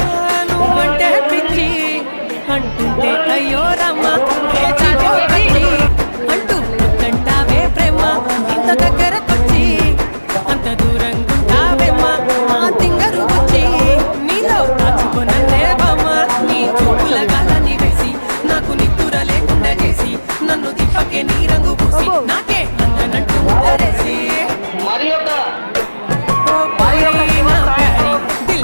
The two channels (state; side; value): inverted; both; correlation -1.00